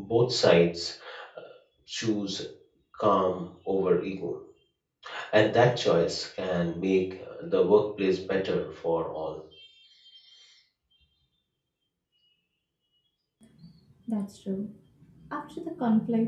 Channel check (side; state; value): both; identical; correlation 1.00